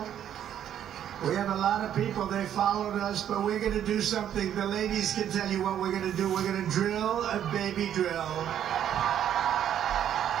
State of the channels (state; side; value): quieter; left; 10.2 dB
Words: We have a lot of people, they followed us, but we're going to do something. The ladies can tell you what we're going to do. We're going to drill a baby drill.